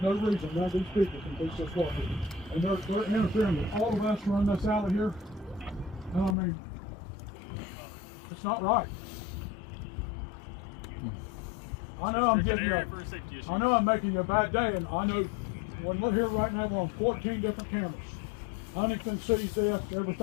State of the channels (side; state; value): right; drops out; at 6.4 s